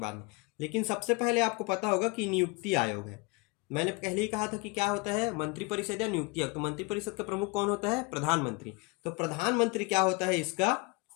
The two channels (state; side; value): quieter; right; 27.7 dB